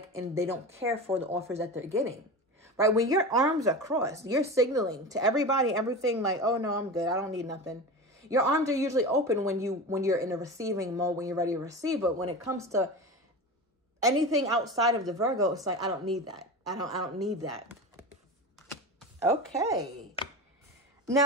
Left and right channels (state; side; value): normal; both; correlation 0.27